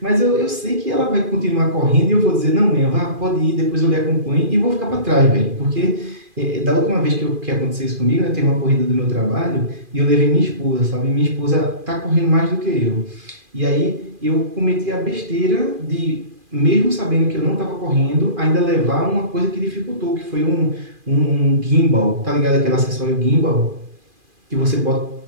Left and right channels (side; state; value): left; late; 2.4 ms